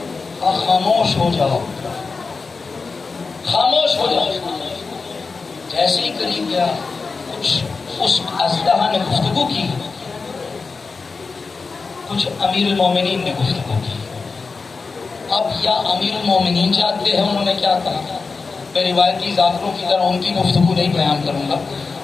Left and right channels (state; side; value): quieter; right; 4.4 dB